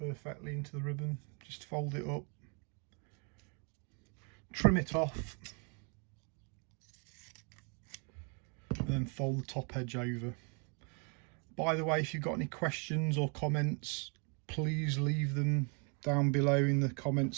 into the ribbon. Just fold it up, trim it off, and then fold the top edge over. By the way, if you've got any questions or comments, please leave them down below in the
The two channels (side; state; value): left; quieter; 37.0 dB